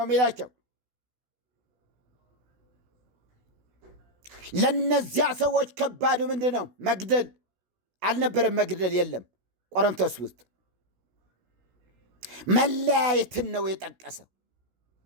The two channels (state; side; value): late; left; 16 ms